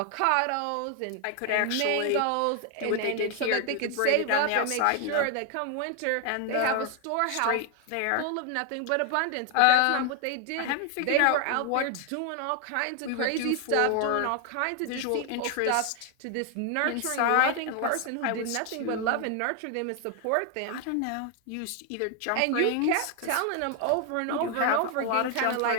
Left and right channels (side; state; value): both; different; correlation 0.00